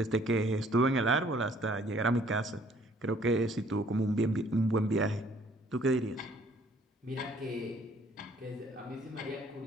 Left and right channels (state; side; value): normal; both; correlation 0.60